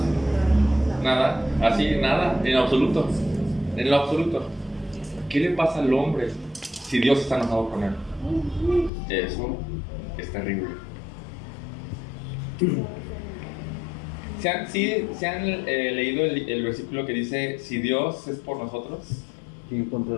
Nada. Así, nada. En absoluto. En lo absoluto. ¿Qué le pasa al hombre si Dios está enojado con él? Eso es terrible. ¿Se han leído el versículo que dice, si Dios es por nosotros, ¿Quién contra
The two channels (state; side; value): drops out; right; at 8.9 s